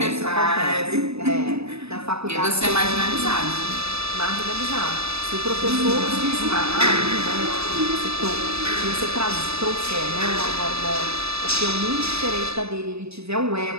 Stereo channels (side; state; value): left; late; 0.79 ms